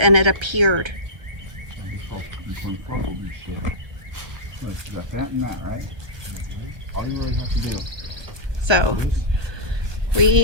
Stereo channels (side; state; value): left; late; 1.6 ms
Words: it appeared. So